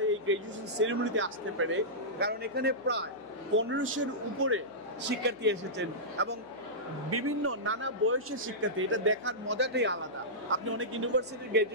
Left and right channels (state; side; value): noise; right; hum, 30 dB below the sound